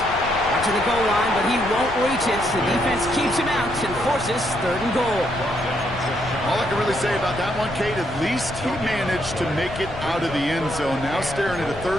Watching the goal line, but he won't reach it. The defense keeps him out and forces 3rd and goal. All I can really say about that one, Kate, at least he managed to make it out of the end zone. Now staring at a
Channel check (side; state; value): left; noise; rumble, 12 dB below the sound